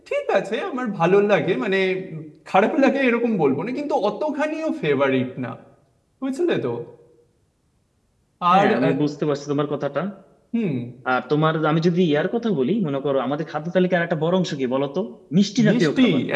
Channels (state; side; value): identical; both; correlation 1.00